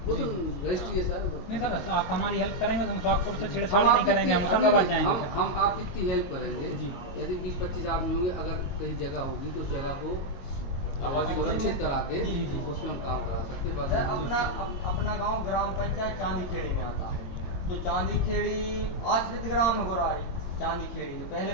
वो तो रजिस्ट्री है सर। नहीं सर, तो आप हमारी हेल्प करेंगे तो हम सोहागपुर से हम छेड़छाड़ नहीं आपकी करेंगे, हम इतनी- होशंगाबाद जाएंगे। हम आपकी इतनी हेल्प करेंगे, जी। यदि 20-25 आदमी होंगे, अगर कहीं जगह होगी तो उस जगह को आबादी सुरक्षित करा के जी, जी। उसमें हम काम करा सकते हैं। सर, बाकी अपना गांव ग्राम पंचायत चांदी खेड़ी में आता है, तो चांदी खेड़ी आश्रित ग्राम है गोरारी चांदी खेड़ी, तो पहले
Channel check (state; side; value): late; right; 22 ms